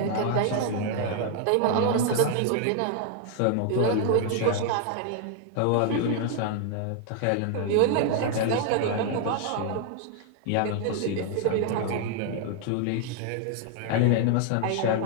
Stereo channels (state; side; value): different; both; correlation 0.00